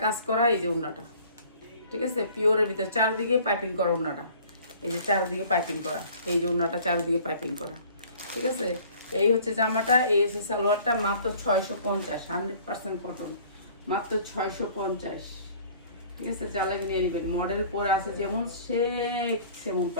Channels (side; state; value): both; inverted; correlation -0.51